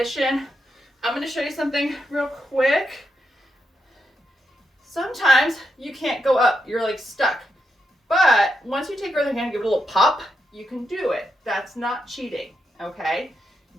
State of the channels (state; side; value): normal; both; correlation 0.83